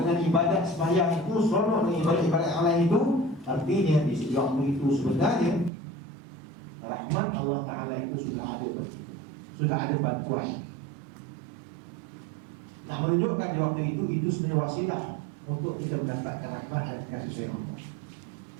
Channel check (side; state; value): left; drops out; at 5.7 s